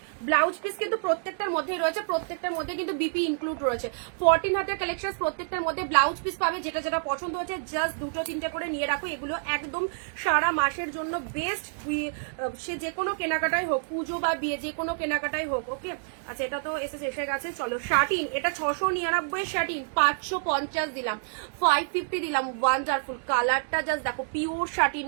ব্লাউজ পিস কিন্তু প্রত্যেকটার মধ্যেই রয়েছে, প্রত্যেকটার মধ্যে কিন্তু বিপি ইনক্লুড রয়েছে। 14 হাতের কালেকশন, প্রত্যেকটার মধ্যে ব্লাউজ পিস পাবে, যেটা যেটা পছন্দ হচ্ছে জাস্ট দুটো তিনটে করে নিয়ে রাখো। এগুলো একদম সারা মাসের জন্য বেস্ট, সে যে কোনো কেনাকাটাই হোক, পুজো বা বিয়ে যে কোনো কেনাকাটাই হোক। ওকে আচ্ছা এটা তো এসে গেছে। চলো শার্টিন, এটা 699 শার্টিন, 550 দিলাম, 550 দিলাম। ওয়ান্ডারফুল কালারটা জাস্ট দেখো, pure satin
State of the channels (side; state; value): left; silent; digital silence